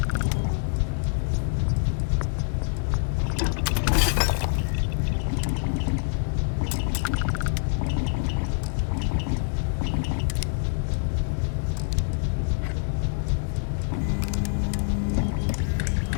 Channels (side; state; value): right; silent; digital silence